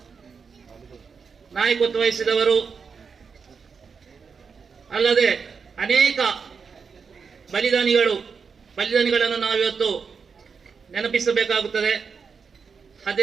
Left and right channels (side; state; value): left; quieter; 5.7 dB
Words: ನಾಯಕತ್ವ ವಹಿಸಿದವರು ಅಲ್ಲದೆ ಅನೇಕ ಬಲಿದಾನಿಗಳನ್ನು ನಾವಿವತ್ತು ನೆನಪಿಸಬೇಕಾಗುತ್ತದೆ.